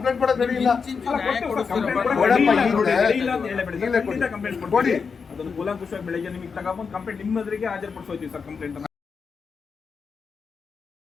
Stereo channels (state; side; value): quieter; right; 5.5 dB